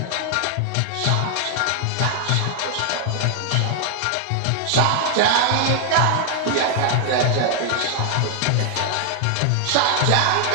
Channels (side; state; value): both; different; correlation 0.00